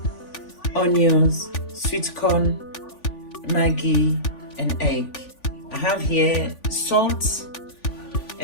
onions, sweet corn, Maggi, and egg. I have here salt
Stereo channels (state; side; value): late; right; 3.5 ms